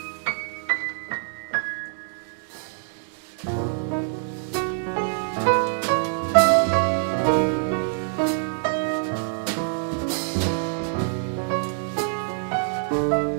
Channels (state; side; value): silent; left; digital silence